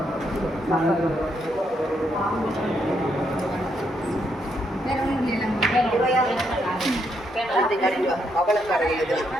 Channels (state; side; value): normal; both; correlation 0.77